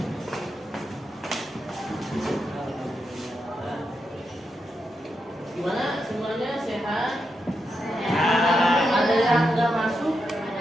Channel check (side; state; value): both; normal; correlation 0.85